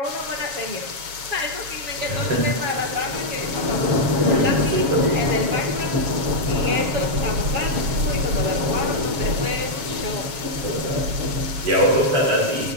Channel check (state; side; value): late; left; 7.3 ms